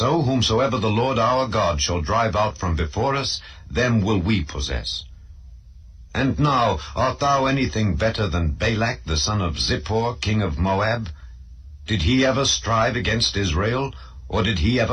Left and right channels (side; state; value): both; identical; correlation 1.00